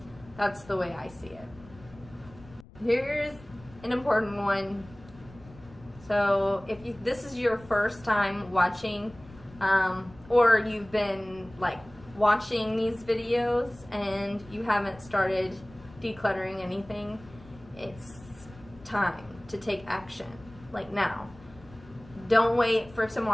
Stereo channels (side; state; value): left; noise; rumble, 21 dB below the sound